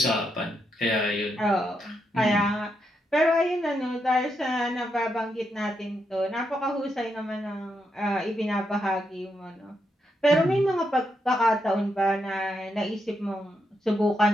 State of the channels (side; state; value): both; normal; correlation 0.81